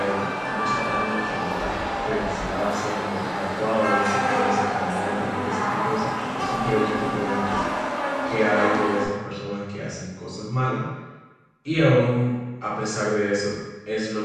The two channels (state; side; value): identical; both; correlation 1.00